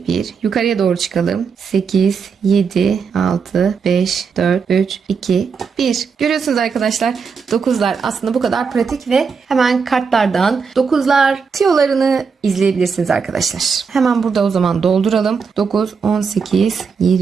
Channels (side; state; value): left; quieter; 5.7 dB